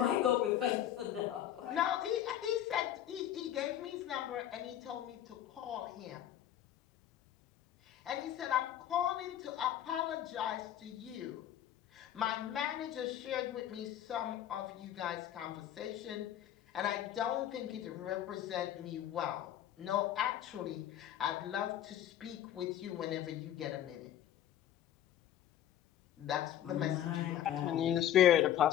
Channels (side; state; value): right; quieter; 11.3 dB